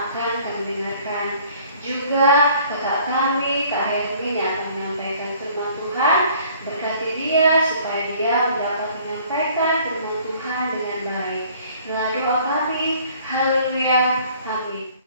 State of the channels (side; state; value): both; inverted; correlation -0.55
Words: kami dengarkan. Juga kakak kami, Kak Hermin yang akan menyampaikan firman Tuhan, berkati dia supaya dia dapat menyampaikan firman Tuhan dengan baik. Inilah doa kami. Haleluya. Amin.